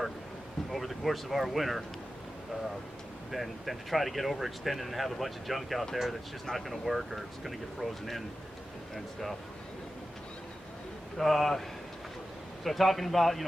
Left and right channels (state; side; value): normal; both; correlation 0.93